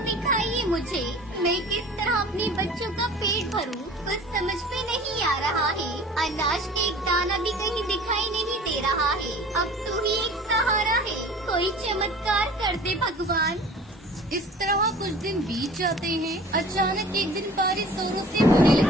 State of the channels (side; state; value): both; normal; correlation 0.44